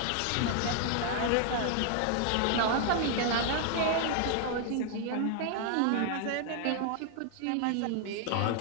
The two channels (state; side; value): different; both; correlation 0.00